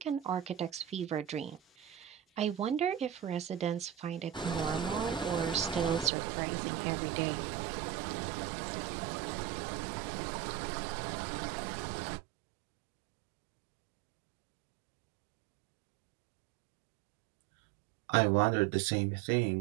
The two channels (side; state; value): left; drops out; at 6.1 s